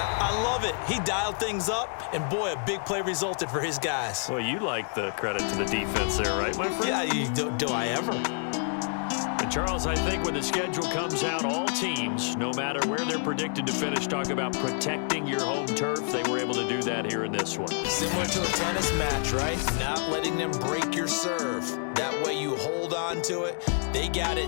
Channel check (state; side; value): silent; right; 59 dB below the other